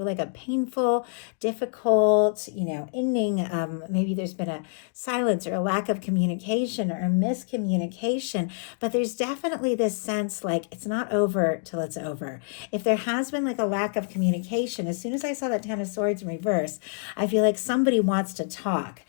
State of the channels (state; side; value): silent; right; digital silence